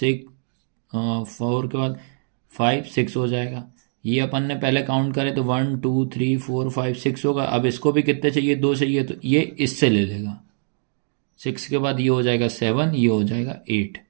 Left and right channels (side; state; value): left; silent; digital silence